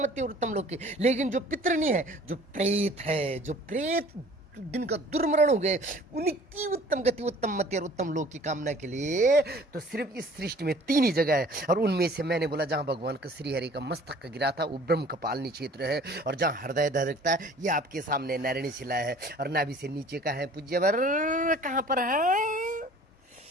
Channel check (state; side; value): normal; both; correlation 0.50